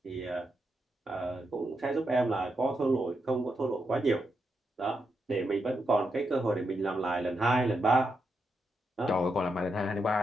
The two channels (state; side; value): normal; both; correlation 0.84